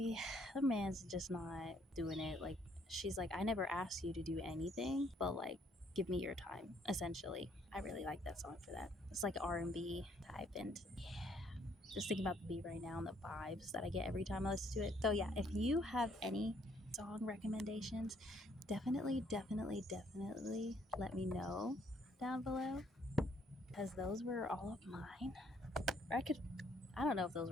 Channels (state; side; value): normal; both; correlation 0.67